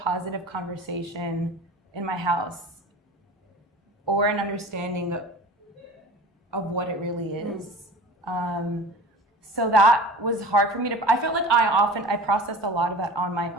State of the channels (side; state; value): both; normal; correlation 0.38